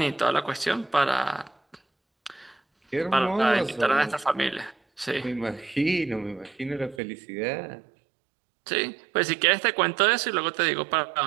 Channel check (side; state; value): left; drops out; at 7.0 s